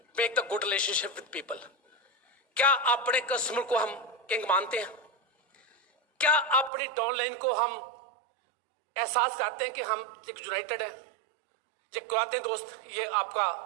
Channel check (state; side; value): drops out; left; at 6.7 s